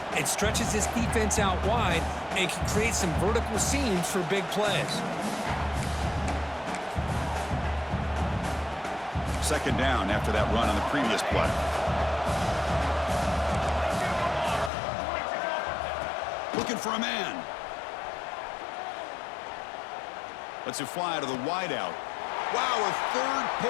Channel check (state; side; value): drops out; right; at 14.7 s